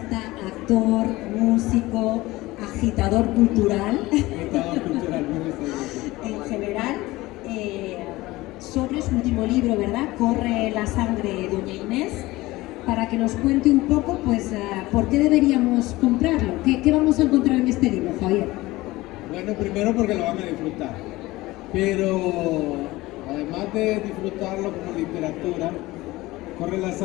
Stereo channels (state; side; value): quieter; right; 19.3 dB